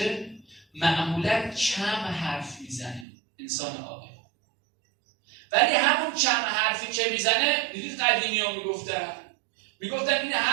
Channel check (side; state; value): left; drops out; at 3.1 s